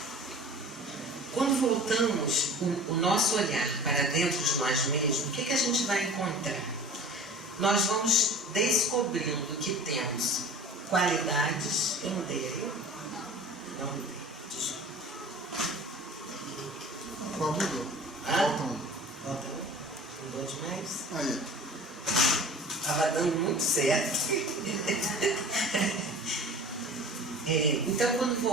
Quando voltamos o nosso olhar para dentro de nós mesmos, o que a gente vai encontrar? Nós vamos descobrindo que temos qualidades. Eu mudei aí? Não mudei. Desculpa. Qual mudou? Volta um. Mudou demais? Aí. Estava dando muito certo. Então, quando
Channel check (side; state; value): both; normal; correlation 0.40